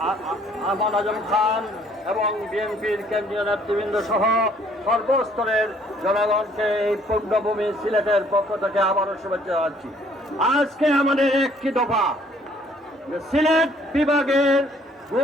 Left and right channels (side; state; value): both; normal; correlation 0.61